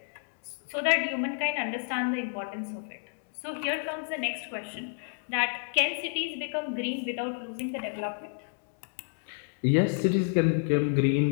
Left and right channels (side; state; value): right; silent; 58 dB below the other